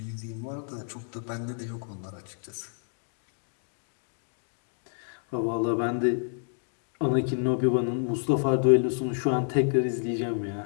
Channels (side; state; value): right; silent; 58 dB below the other